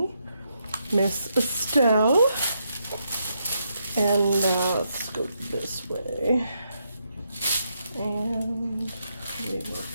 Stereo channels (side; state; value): both; inverted; correlation -0.79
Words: Miss Estelle. And let's go this way. And we will